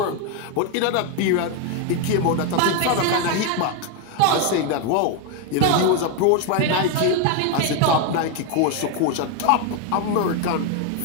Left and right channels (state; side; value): different; both; correlation 0.01